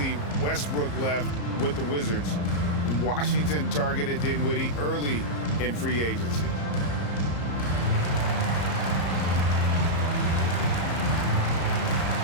Westbrook left with the Wizards. Washington targeted Dinwiddie early in free agency.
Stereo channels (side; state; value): right; late; 34 ms